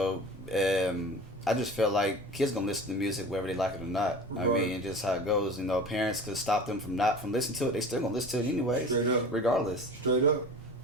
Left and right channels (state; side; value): normal; both; correlation 0.37